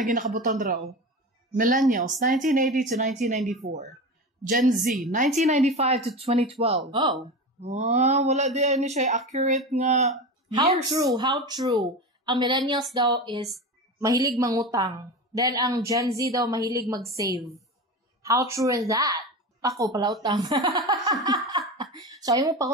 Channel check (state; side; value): normal; both; correlation 0.26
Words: nakabutang draw. Millennials 1980 to 1994. Gen Z 1995 to 2012. Oh. Wala di ani siya accurate nga How years. true. Ang millennials daw is mahilig mangutang. Then, ang Gen Z daw mahilig mag-save. How true is that? Ako, palautang. So, ayaw mo